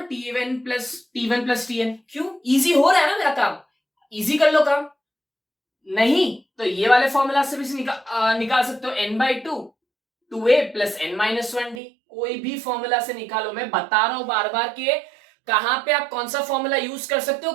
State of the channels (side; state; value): left; drops out; at 11.8 s